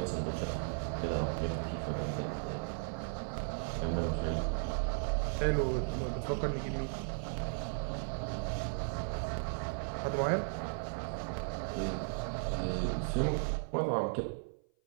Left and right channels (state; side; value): silent; left; 54 dB below the other